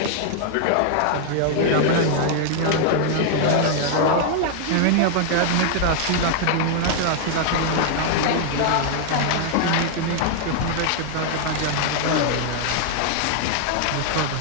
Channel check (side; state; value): both; different; correlation 0.00